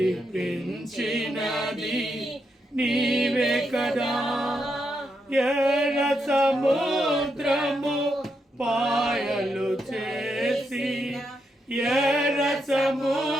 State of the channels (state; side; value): normal; both; correlation 0.82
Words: నీవే కదా. ఎర్ర సముద్రము పాయలు చేసి, ఎర్ర